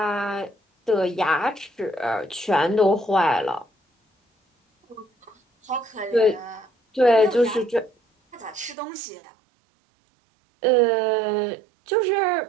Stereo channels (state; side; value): drops out; left; at 8.8 s